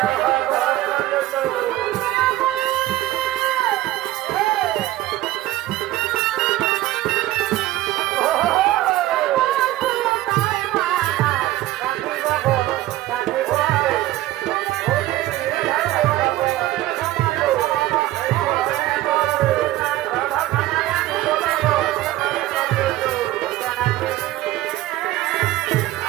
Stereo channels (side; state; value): left; quieter; 15.6 dB